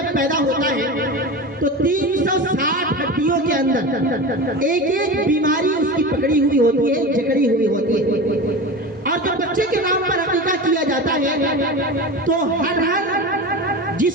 پیدا ہوتا ہے تو 360 ہڈیوں کے اندر ایک ایک بیماری اس کی پکڑی ہوئی ہوتی ہے، جکڑی ہوئی ہوتی ہے، اور جب بچے کے نام پر عقیقہ کیا جاتا ہے تو ہر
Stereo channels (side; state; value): both; normal; correlation 0.28